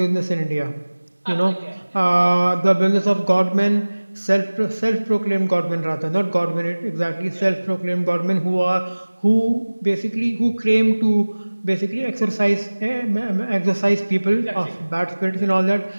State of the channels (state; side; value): inverted; both; correlation -1.00